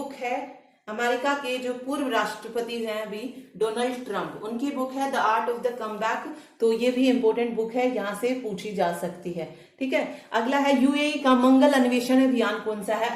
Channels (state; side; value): identical; both; correlation 1.00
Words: है अमेरिका के जो पूर्व राष्ट्रपति हैं अभी डोनाल्ड ट्रंप, उनकी बुक है the art of the come back. तो ये भी इंपॉर्टेंट बुक है, यहां से पूछी जा सकती है। ठीक है, अगला है यूएई का मंगल अन्वेषण अभियान कौन सा है?